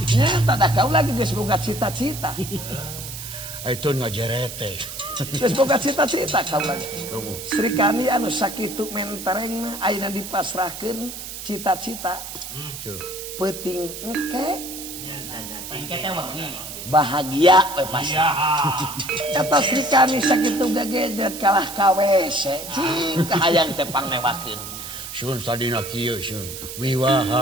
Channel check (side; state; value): right; noise; hiss, 10 dB below the sound